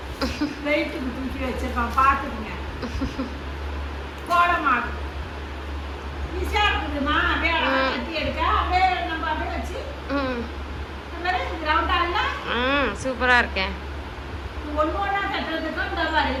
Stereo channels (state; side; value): identical; both; correlation 1.00